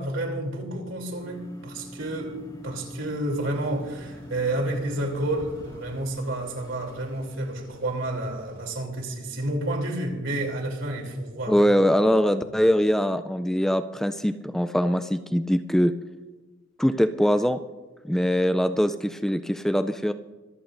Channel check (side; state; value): both; normal; correlation 0.83